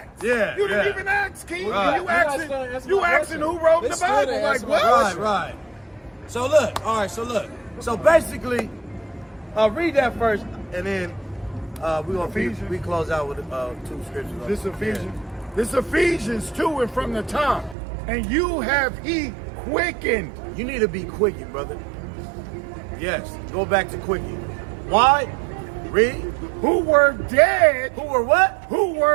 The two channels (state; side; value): drops out; left; at 17.8 s